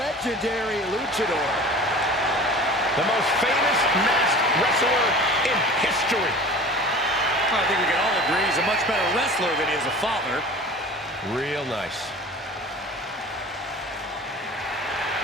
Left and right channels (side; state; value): both; normal; correlation 0.40